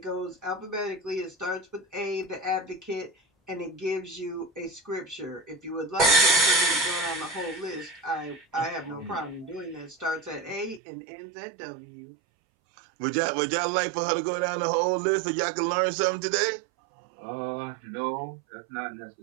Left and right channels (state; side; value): drops out; left; at 10.8 s